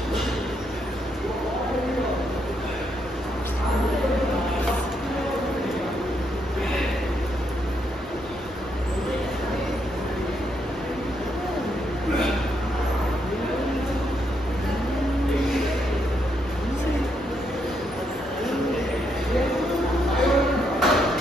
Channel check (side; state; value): both; normal; correlation 0.77